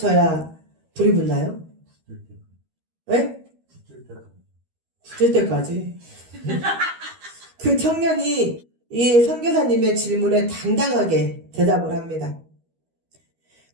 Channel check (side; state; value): left; late; 13 ms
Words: 불이 붙나요? 네? 붙을 때까지. 그 청년이 이 선교사님의 질문에 당당하게 대답을 합니다.